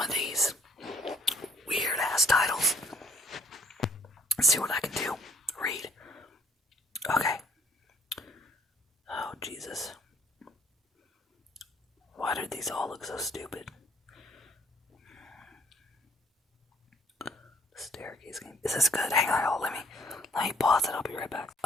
these weird ass titles. See what I can do. Read. Okay. Oh, Jesus. Why did these all look so stupid? Staircase game. Is this good? Hang on, y'all. Let me pause it. I'll be right back.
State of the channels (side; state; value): both; normal; correlation 0.61